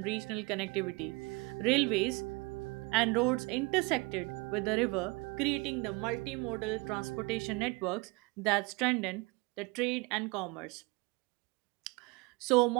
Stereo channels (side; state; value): left; quieter; 26.5 dB